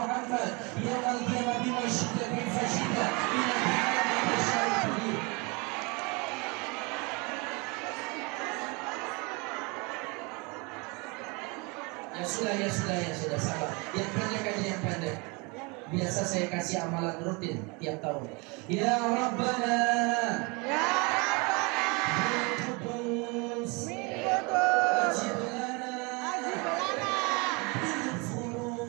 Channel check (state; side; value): quieter; left; 29.0 dB